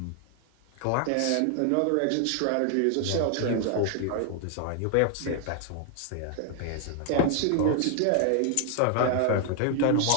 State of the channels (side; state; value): both; different; correlation 0.00